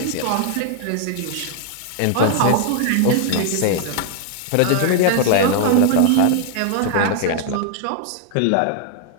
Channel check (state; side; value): different; both; correlation 0.00